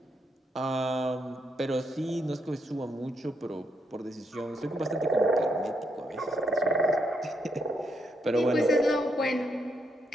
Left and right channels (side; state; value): both; normal; correlation 0.77